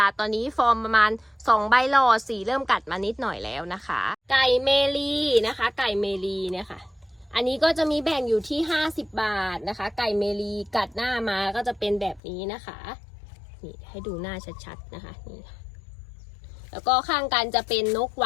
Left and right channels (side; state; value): right; drops out; at 12.2 s